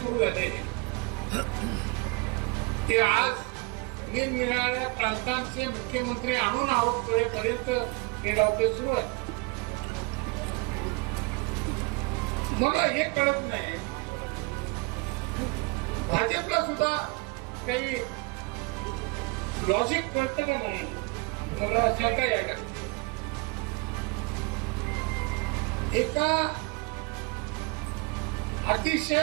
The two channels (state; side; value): quieter; left; 29.0 dB